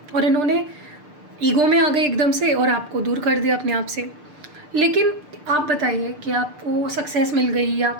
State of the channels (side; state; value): left; late; 6.7 ms